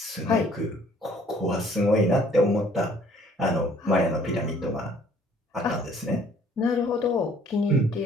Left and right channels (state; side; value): normal; both; correlation 0.58